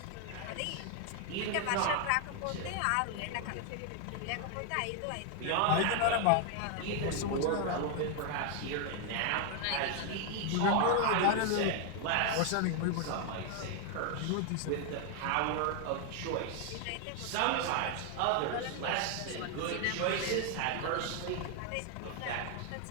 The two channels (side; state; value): both; different; correlation 0.00